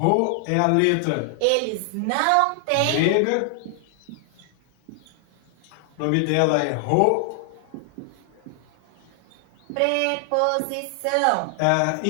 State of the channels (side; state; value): both; different; correlation 0.00